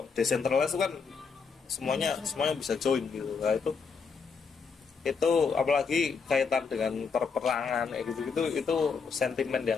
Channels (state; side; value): quieter; right; 5.4 dB